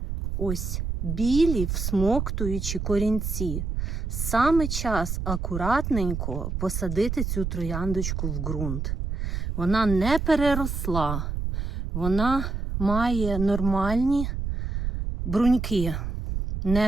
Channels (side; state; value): right; noise; rumble, 3 dB below the sound